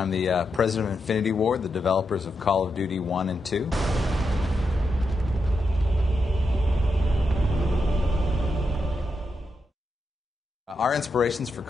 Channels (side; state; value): both; normal; correlation 0.85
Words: the president of Infinity Ward, the developers of Call of Duty 1 and 2. Our inspirations for